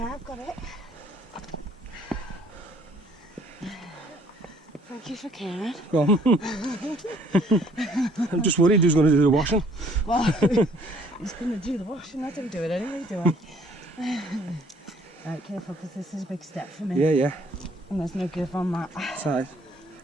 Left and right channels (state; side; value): normal; both; correlation 0.60